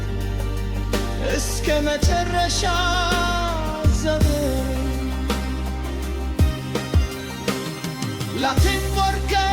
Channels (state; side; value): identical; both; correlation 1.00